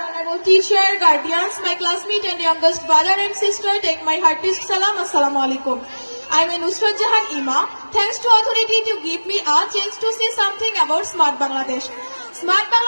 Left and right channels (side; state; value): both; inverted; correlation -1.00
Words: teacher, guardians, my classmate and youngest brother and sister, take my heartiest salam. Assalamu alaikum. I am Nusrat Jahan Ima. Thanks to authority to give me a chance to say something about Smart Bangladesh. Smart